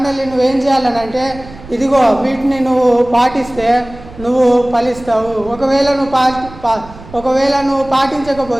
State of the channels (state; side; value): noise; right; rumble, 18 dB below the sound